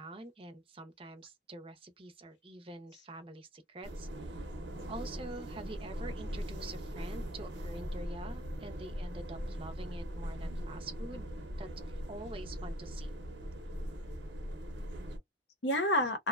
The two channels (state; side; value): normal; both; correlation 0.40